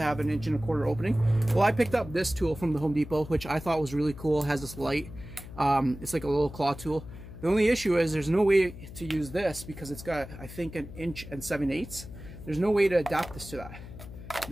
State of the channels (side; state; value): left; noise; hum, 14 dB below the sound